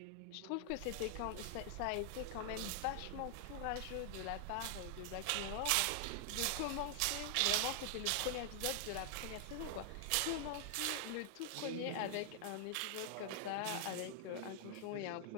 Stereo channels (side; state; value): both; different; correlation 0.00